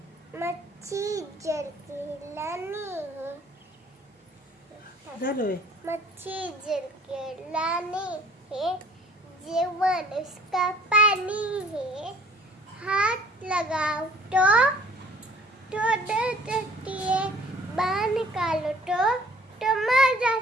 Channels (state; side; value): normal; both; correlation 0.54